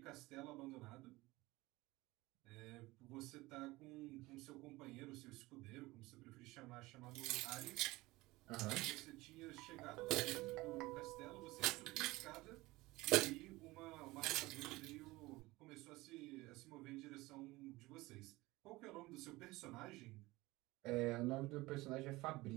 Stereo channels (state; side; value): quieter; left; 20.4 dB